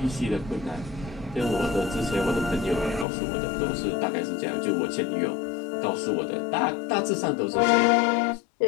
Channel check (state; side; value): drops out; right; at 3.1 s